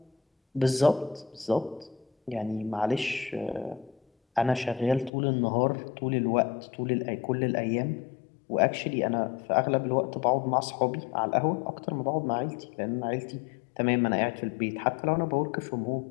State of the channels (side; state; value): right; drops out; at 5.1 s